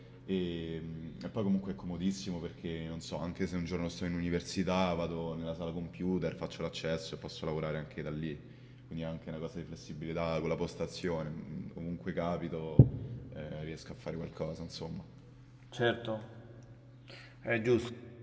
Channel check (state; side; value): identical; both; correlation 1.00